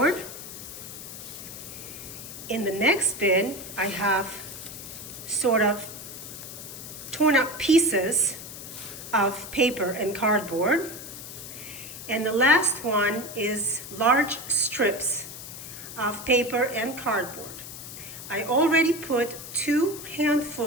In the next bin I have sort of torn up pieces of paper and cardboard. And the last one is large strips of paper and cardboard. I already put 2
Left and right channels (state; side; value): noise; left; hiss, 11 dB below the sound